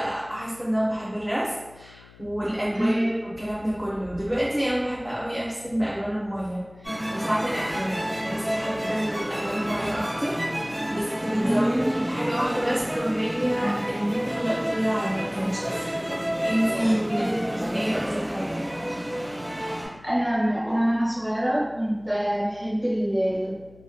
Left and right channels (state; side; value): noise; left; hum, 23 dB below the sound